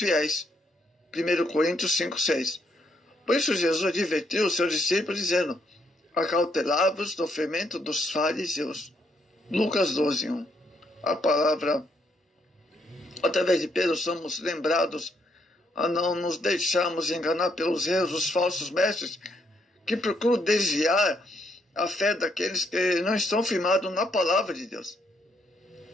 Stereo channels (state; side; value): normal; both; correlation 0.74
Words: 1 Coríntios 5:6. Por isso Jesus advertiu os seus discípulos, dizendo: acautelai-vos do fermento dos fariseus. Lucas 12:1. A palavra, através de Pedro, somos lembrados a não nos deixarmos enganar pelos erros dos falsos mestres que procuram desviar a fé daqueles que não estão firmados na palavra de Deus.